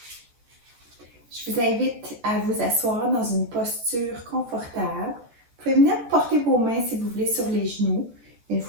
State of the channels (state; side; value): late; left; 14 ms